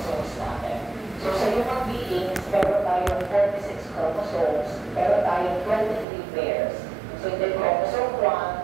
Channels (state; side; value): drops out; left; at 6.1 s